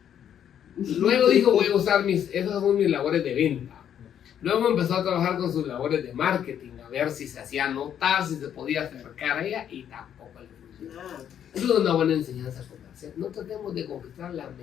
Luego dijo, voy a usar esas son mis labores de venta. Luego empezó a trabajar con sus labores de marketing, a ver si se hacía notar, si se podía acercar a ella, y tampoco le funcionaba. Eso es una buena enseñanza comercial. No tratemos de conquistar la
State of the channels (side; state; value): right; quieter; 9.5 dB